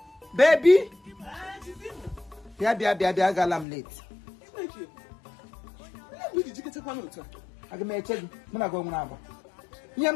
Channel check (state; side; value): drops out; right; at 3.7 s